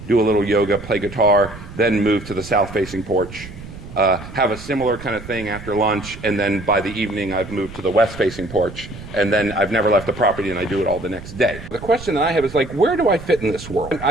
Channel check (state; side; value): noise; right; rumble, 14 dB below the sound